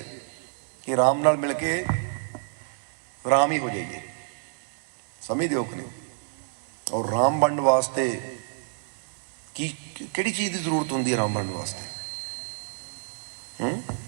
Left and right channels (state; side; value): silent; left; digital silence